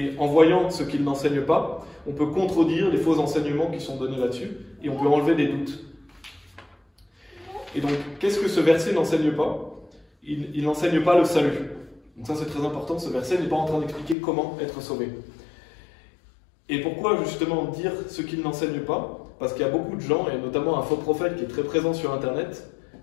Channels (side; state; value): right; drops out; at 14.2 s